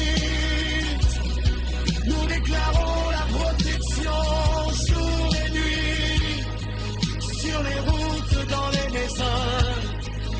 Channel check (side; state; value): both; identical; correlation 1.00